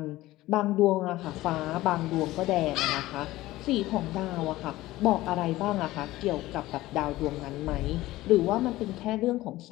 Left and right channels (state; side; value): quieter; right; 17.2 dB